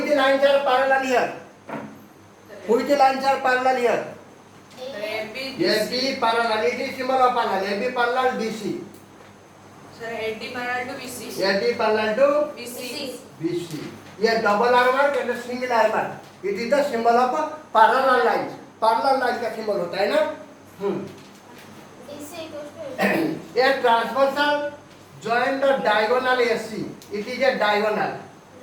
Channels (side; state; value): both; identical; correlation 1.00